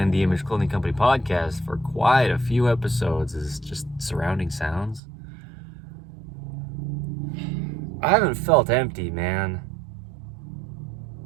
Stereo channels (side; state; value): left; drops out; at 5.0 s